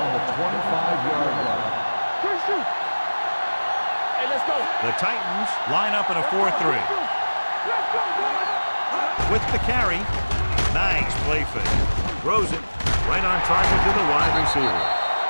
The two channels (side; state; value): both; inverted; correlation -1.00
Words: the 25-yard line. Hey, let's go. The Titans line up in a 4-3. Let's go, boys. With the carry. Nice play fake. Throws it right on target to the wide receiver.